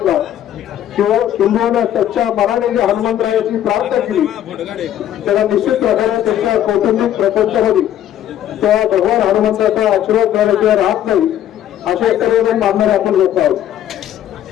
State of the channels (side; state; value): right; quieter; 11.3 dB